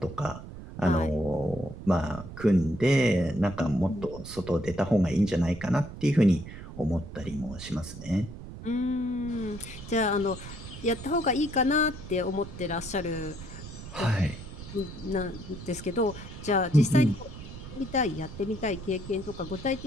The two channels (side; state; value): right; noise; rumble, 12 dB below the sound